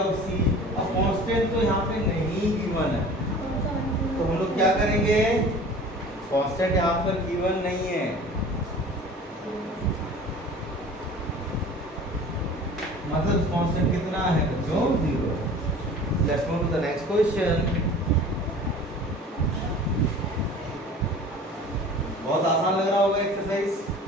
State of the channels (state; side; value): normal; both; correlation 0.43